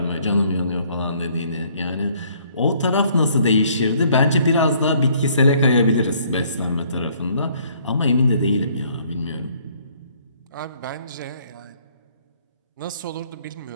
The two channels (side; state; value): both; inverted; correlation -0.62